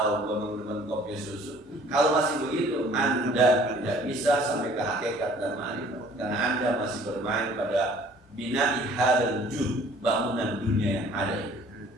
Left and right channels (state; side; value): normal; both; correlation 0.54